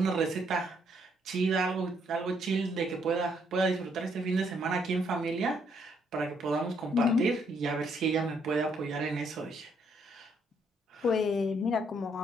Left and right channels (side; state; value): both; normal; correlation 0.71